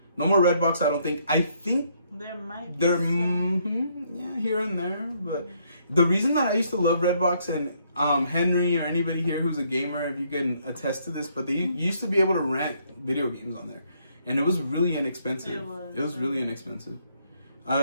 No more Redbox, I don't think. I think there might be yeah, here and there. But the reason that I used to love Redbox, and Henry or anybody here who's a gamer, if you can attest to this, but they used to be able to rent video games on there. And it was really inexpensive. It was really inexpensive.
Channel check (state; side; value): inverted; both; correlation -0.70